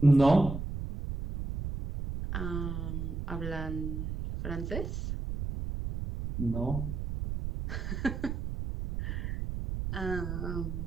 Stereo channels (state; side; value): noise; right; rumble, 4 dB below the sound